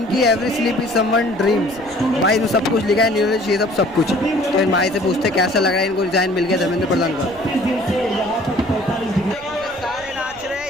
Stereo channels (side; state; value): left; noise; rumble, 24 dB below the sound